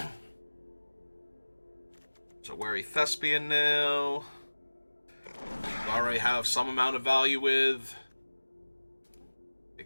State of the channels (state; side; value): inverted; both; correlation -1.00